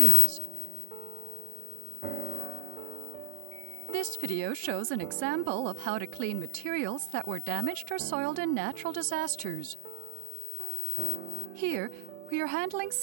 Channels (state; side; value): different; both; correlation 0.00